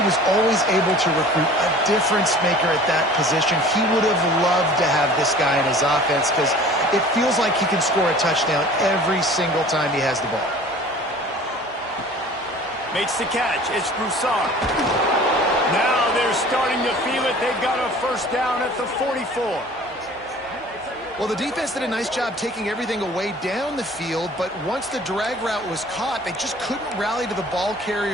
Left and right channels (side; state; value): both; normal; correlation 0.46